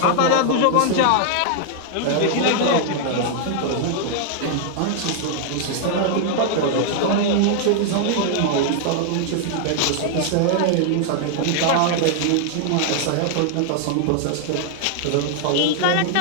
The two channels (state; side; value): different; both; correlation -0.01